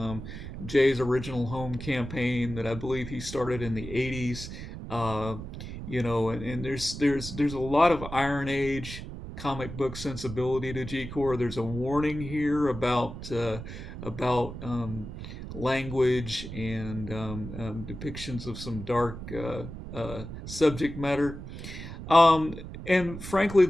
Jay's original home campaign that I believe he started in the '80s. Uh, and there's a lot of Iron Age comic book sensibility to G Corps. There's a warning here about language and depictions of some dark subject matter. And frankly,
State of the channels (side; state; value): right; noise; rumble, 10 dB below the sound